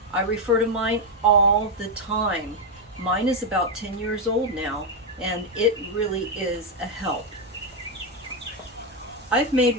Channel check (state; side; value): normal; both; correlation 0.04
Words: I refer to mine all the time. Mine is about 10 years old now, and it really is a help. I've made